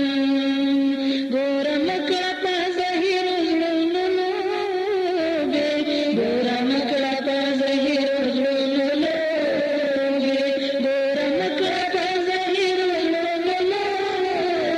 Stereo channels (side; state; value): both; identical; correlation 1.00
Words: ګوره مه کړه په زهیرو زړونو لوبې، ګوره مه کړه په زهیرو زړونو لوبې، ګوره مه کړه په زهیرو زړونو